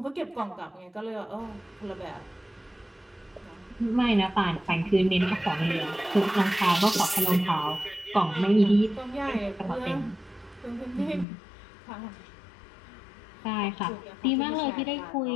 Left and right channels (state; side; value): drops out; right; at 11.2 s